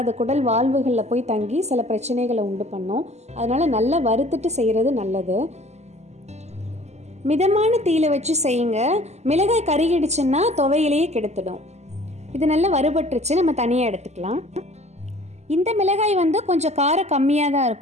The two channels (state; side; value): late; left; 0.33 ms